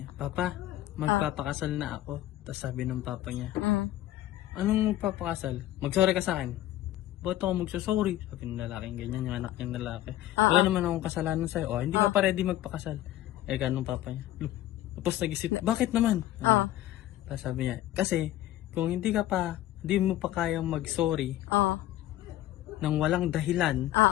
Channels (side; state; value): right; quieter; 14.0 dB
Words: niya, Papa, magpapakasal na ako. Tapos sabi ng papa niya, anong magpapakasal? Mag-sorry ka sa akin. Ba't ako magsasorry? Sabi ng lalaking ganyan, yung anak niyang lalaki. Wala naman akong kasalanan sa'yo. Oh, hindi ka pa ready magpakasal. Eh, ganun papa niya. Tapos nag-isip, bakit naman? Tapos sabi niya, kasi kung hindi mo pa kayang mag-sorry nang walang dahilan,